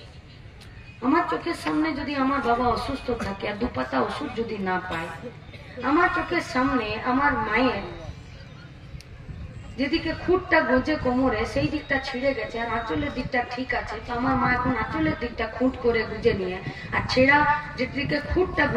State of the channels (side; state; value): both; identical; correlation 1.00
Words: আমার চোখের সামনে যদি আমার বাবা অসুস্থ থাকে আর 2 পাতা ওষুধ যদি না পায়, আমার চোখের সামনে আমার মায়ের যেদিকে খুঁটটা গোজে কোমরে সেই দিকটা ছিঁড়ে গেছে আর আঁচলের দিকটা ঠিক আছে, তো আমার মা এখন আঁচলের দিকটা খুঁট করে গুজে নিয়ে আর ছেঁড়া যেদিকে খুঁটটা